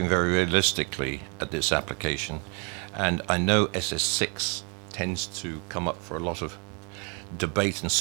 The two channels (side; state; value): left; quieter; 35.4 dB